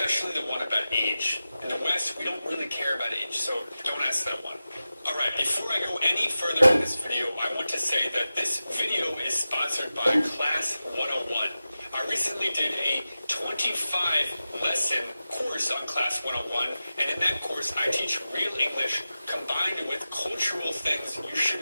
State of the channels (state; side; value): inverted; both; correlation -0.94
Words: the one about age. In the West, we don't really care about age, so don't ask that one. Alright, before I go any further in this video, I want to say that this video is sponsored by Class 101. I recently did a 25-lesson course on Class 101, and in that course I teach real English combined with cultural things you should